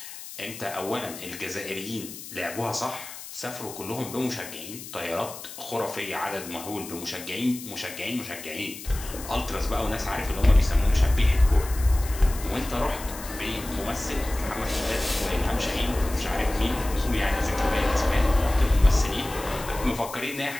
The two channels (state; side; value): noise; left; hiss, 13 dB below the sound